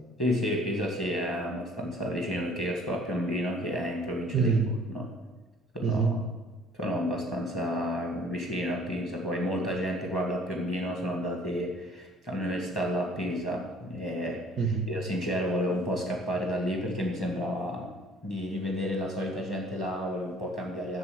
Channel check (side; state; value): both; normal; correlation 0.55